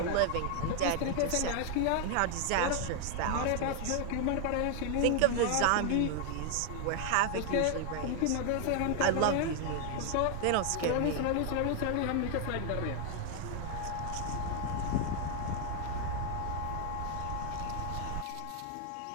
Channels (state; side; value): different; both; correlation 0.00